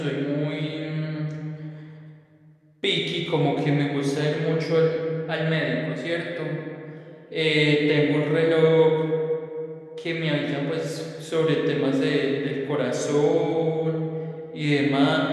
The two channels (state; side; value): identical; both; correlation 1.00